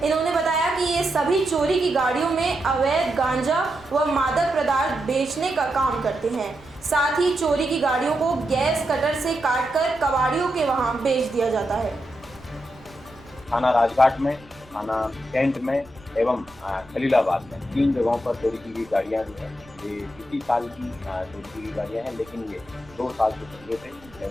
इन्होंने बताया कि ये सभी चोरी की गाड़ियों में अवैध गांजा व मादक पदार्थ बेचने का काम करते हैं। साथ ही चोरी की गाड़ियों को गैस कटर से काटकर कबाड़ियों के वहां बेच दिया जाता है। थाना राजघाट में, थाना कैंट में एवं खलीलाबाद में 3 जगहों पर चोरी की गई गाड़ियाँ जो हैं ये इसी साल की चोरी की गई गाड़ियाँ हैं, लेकिन ये 2 साल से पहले थे,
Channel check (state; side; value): noise; right; rumble, 25 dB below the sound